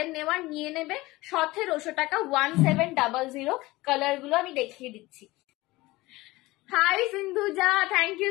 নেওয়ার নিয়ে নেবে, 1700 টাকা, 1700 কালার গুলো আমি দেখিয়ে দিচ্ছি। Hi Sindhuja, thank you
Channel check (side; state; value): right; quieter; 20.0 dB